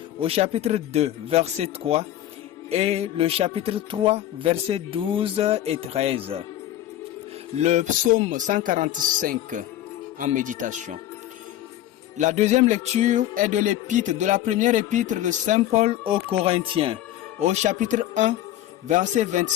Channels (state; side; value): quieter; right; 12.9 dB